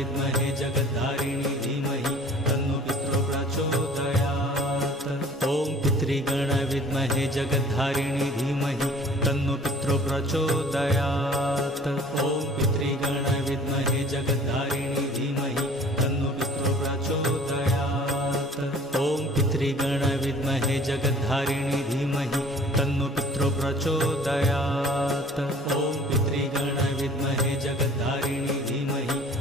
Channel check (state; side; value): normal; both; correlation 0.50